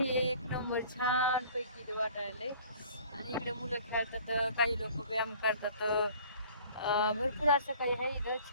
एक नंबर छान पैकी इथं वाटायलंय. आणि इकडे मुलं खेळतात काही लोक व्यायाम करतात. भरपूर असं काही आहे इथं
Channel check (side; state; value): both; inverted; correlation -0.51